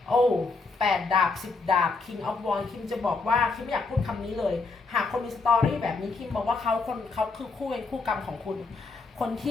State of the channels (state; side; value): quieter; right; 4.0 dB